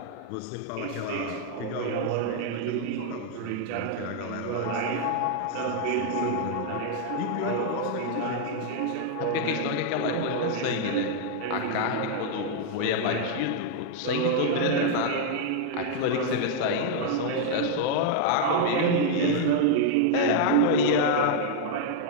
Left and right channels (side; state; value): both; different; correlation 0.00